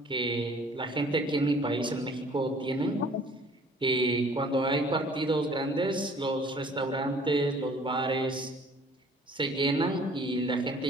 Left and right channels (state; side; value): normal; both; correlation 0.54